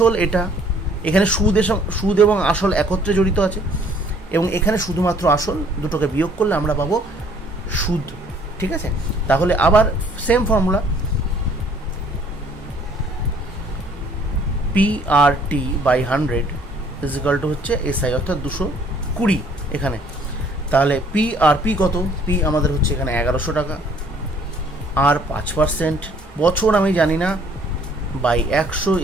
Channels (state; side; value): normal; both; correlation 0.59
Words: এটা, এখানে সুদ এবং আসল একত্রে জড়িত আছে, এবং এখানে শুধুমাত্র আসল, দুটোকে বিয়োগ করলে আমরা পাবো সুদ। ঠিক আছে, তাহলে আবার same formula, P R T by 100 is equal to হচ্ছে এসআই, অর্থাৎ 220 এখানে। তাহলে পি আর পি কত? পি আমাদের হচ্ছে এখানে 1100 টাকা, আর 5%, বছর আমি জানি না, বাই 100